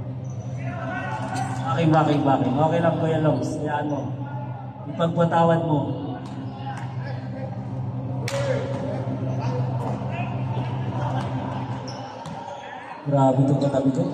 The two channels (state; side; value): identical; both; correlation 1.00